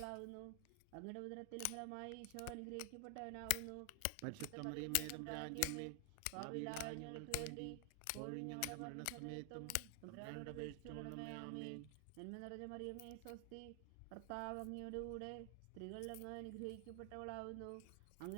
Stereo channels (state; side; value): different; both; correlation 0.00